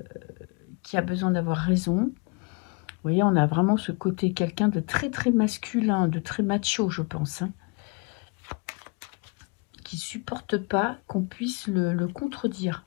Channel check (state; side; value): quieter; right; 31.1 dB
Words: a besoin d'avoir raison. Vous voyez, on a vraiment ce côté quelqu'un de très très masculin, de très macho, je pense. Hein, qui supporte pas qu'on puisse le contredire.